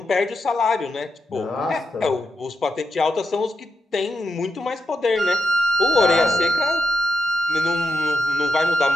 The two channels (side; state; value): both; normal; correlation 0.86